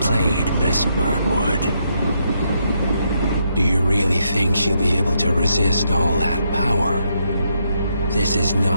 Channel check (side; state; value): both; inverted; correlation -0.77